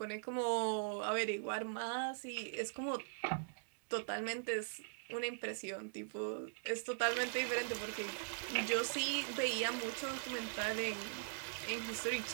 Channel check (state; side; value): silent; left; digital silence